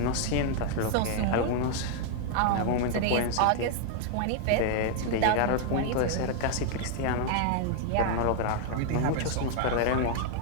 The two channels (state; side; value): different; both; correlation 0.00